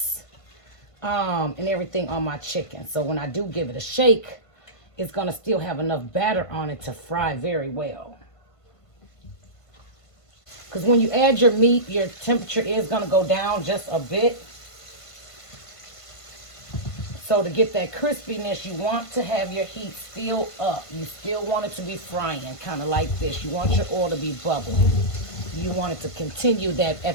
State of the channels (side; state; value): right; late; 1.5 ms